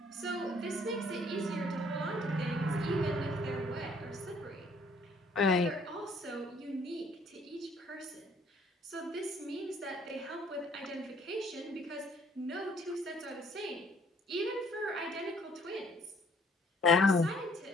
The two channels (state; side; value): normal; both; correlation 0.61